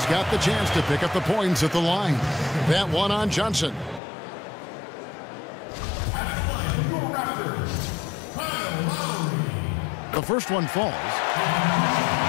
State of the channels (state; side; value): drops out; right; at 4.0 s